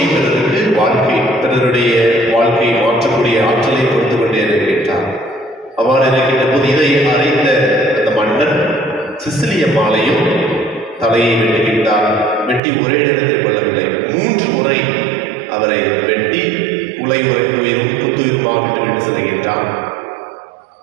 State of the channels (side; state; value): left; drops out; at 12.6 s